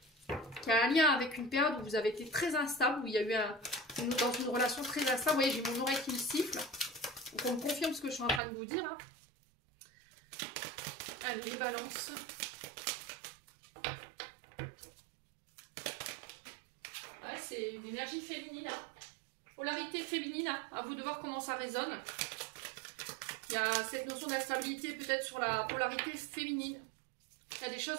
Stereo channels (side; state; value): left; drops out; at 8.4 s